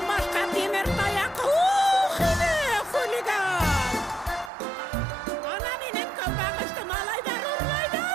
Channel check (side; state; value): left; drops out; at 4.5 s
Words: башҡа тимер таяҡ. Ух, һине, хулиган! Ана минең көнбағышты малайҙар